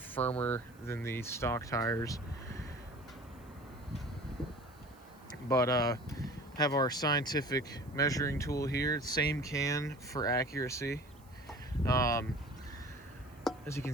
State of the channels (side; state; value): right; noise; hiss, 29 dB below the sound